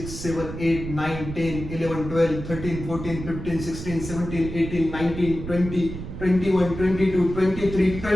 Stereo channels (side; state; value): right; noise; rumble, 9 dB below the sound